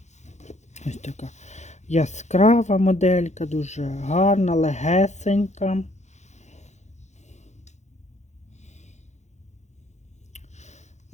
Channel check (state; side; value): late; right; 0.33 ms